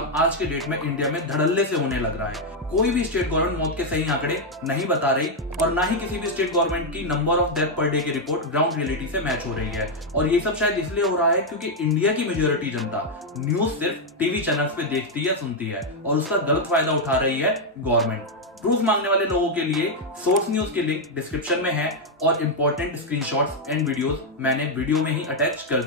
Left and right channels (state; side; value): normal; both; correlation 0.01